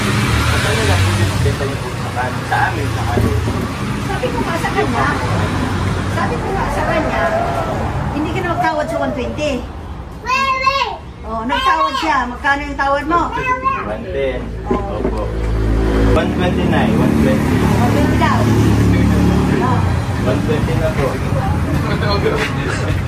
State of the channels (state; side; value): identical; both; correlation 1.00